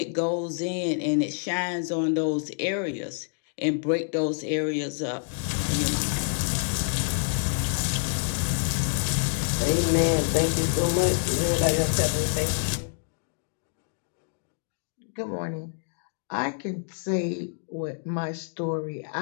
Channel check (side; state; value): right; silent; digital silence